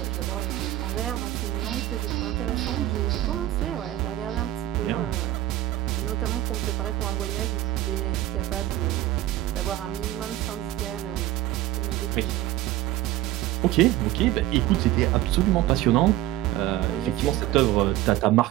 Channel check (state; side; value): quieter; left; 15.0 dB